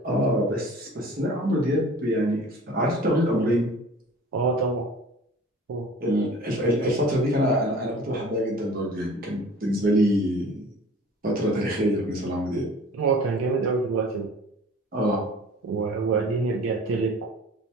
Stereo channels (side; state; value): both; normal; correlation 0.45